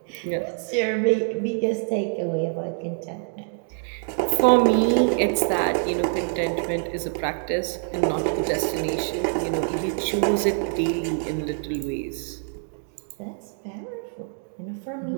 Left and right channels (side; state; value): left; silent; 62 dB below the other